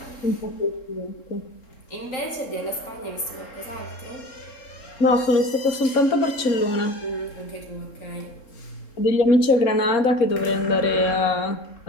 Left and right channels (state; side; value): late; right; 3.7 ms